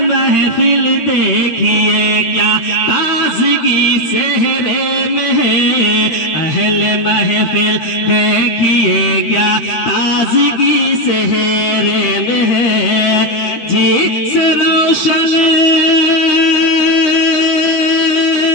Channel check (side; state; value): right; late; 13 ms